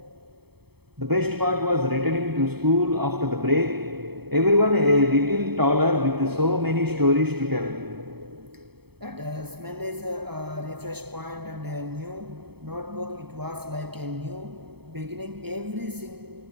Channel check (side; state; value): left; late; 0.97 ms